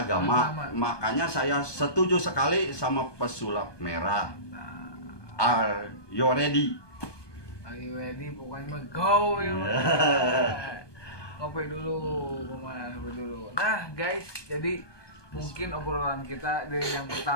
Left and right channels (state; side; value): late; right; 1.2 ms